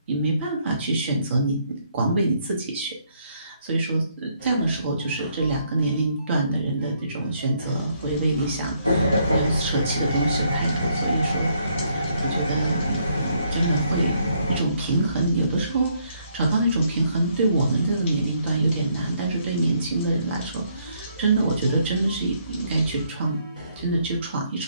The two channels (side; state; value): both; inverted; correlation -0.70